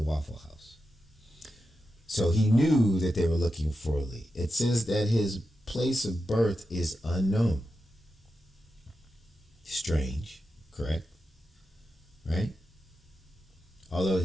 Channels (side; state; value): both; normal; correlation 0.89